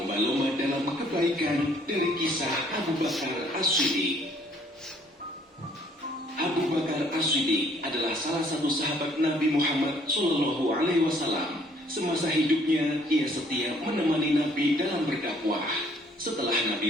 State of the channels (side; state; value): both; normal; correlation 0.62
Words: dalam kebaikan dari kisah Abu Bakar As-Siddiq. Abu Bakar As-Siddiq adalah salah satu sahabat Nabi Muhammad SAW. Semasa hidupnya, ia setia menemani Nabi dalam berdakwah. Setelah Nabi